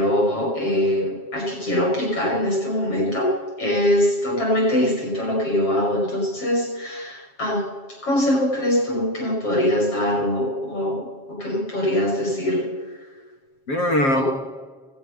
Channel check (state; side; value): late; right; 7.4 ms